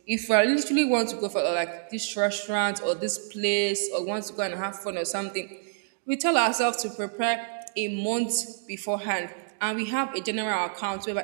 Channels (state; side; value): silent; left; digital silence